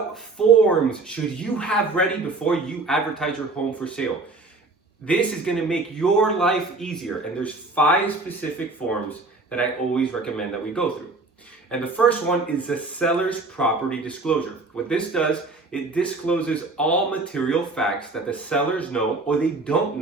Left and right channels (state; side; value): quieter; left; 3.5 dB